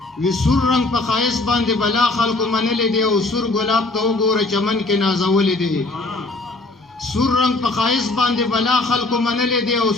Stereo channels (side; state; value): right; quieter; 3.1 dB